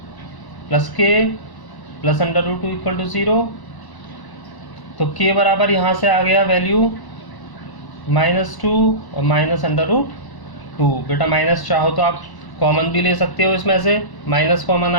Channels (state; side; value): late; right; 1.1 ms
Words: plus k plus √2 equal to 0। तो k बराबर यहाँ से आ गया वैल्यू -2 और -√2। बेटा माइनस चाहो तो आप कॉमन भी ले सकते हो, इसमें से माइनस कॉमन